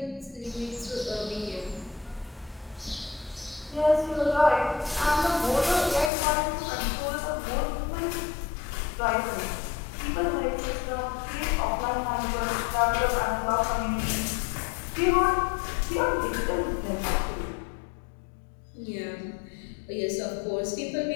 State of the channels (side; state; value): right; drops out; at 6.1 s